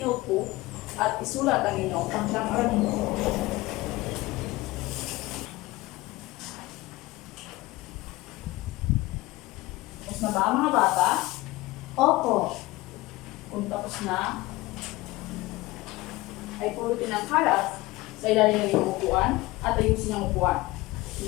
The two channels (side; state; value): right; quieter; 20.0 dB